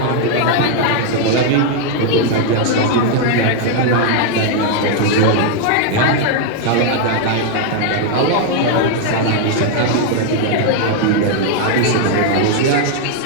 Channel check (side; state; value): both; different; correlation 0.00